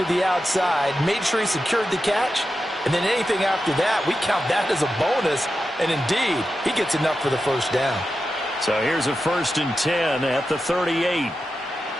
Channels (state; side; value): normal; both; correlation 0.90